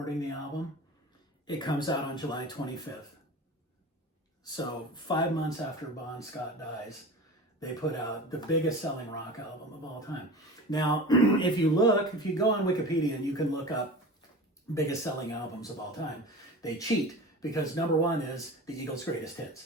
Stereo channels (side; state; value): both; normal; correlation 0.34